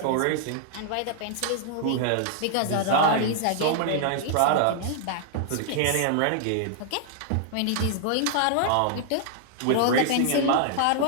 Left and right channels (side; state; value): both; different; correlation -0.01